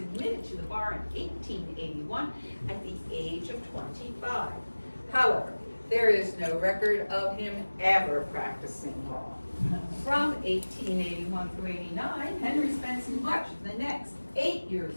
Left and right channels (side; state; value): both; inverted; correlation -1.00